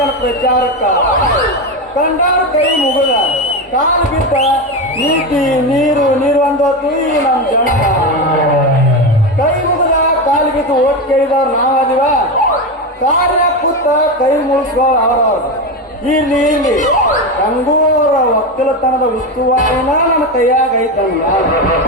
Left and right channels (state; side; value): normal; both; correlation 0.16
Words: ಪ್ರಚಾರಕ್ಕ ಕಂಡಾರ ಕೈ ಮುಗಿದ ಕಾಲು ಬಿದ್ದ ನೀತಿ ನೀರು ನೀರು ಅಂದೋತು ಈ ನಮ್ಮ ಜಂಡ ಕೈ ಮುಗಿದ ಕಾಲು ಬಿದ್ದು ಓಟ್ ಕೇಳಿದವ್ರು ನಾವದಿವ ಕಾರ್ಯ ಕೂತ ಕೈ ಮುಗಿಸ್ಕೋ ಅವ್ರವ್ರು ಇಲ್ಲಿ ಇಲ್ಲಿ ಗಂಗೂರ ಒಕ್ಕಲತನದ ಉಸ್ತುವಾರಿನ ನನ್ನ ಕೈಯಾಗ ಐತಂಗ